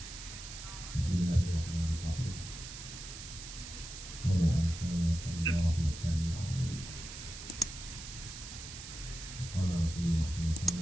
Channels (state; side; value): noise; right; hiss, 11 dB below the sound